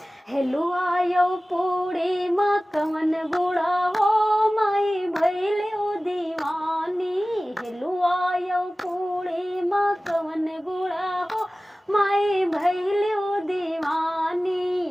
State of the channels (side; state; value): both; normal; correlation 0.97